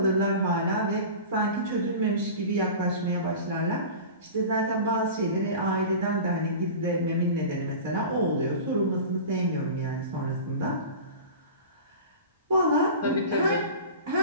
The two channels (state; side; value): inverted; both; correlation -0.34